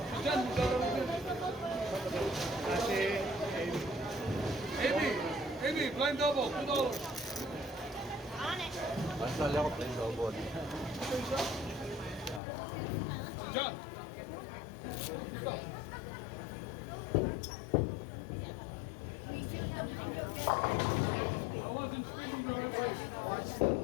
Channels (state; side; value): drops out; right; at 12.4 s